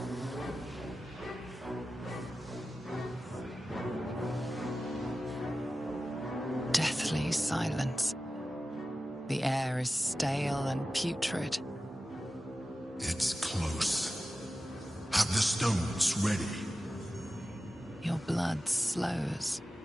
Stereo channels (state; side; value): normal; both; correlation 0.94